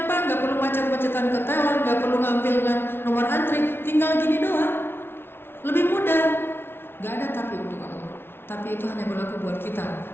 nggak perlu macet-macetan ke teller, nggak perlu ngambil nomor antri, tinggal gini doang. Lebih mudah. Nggak ada tapi untuk Allah. Tapi itu hanya berlaku buat kita.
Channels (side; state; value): right; late; 0.11 ms